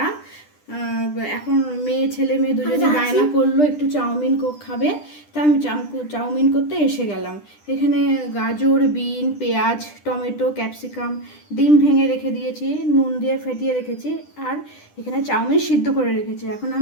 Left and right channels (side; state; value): right; late; 10 ms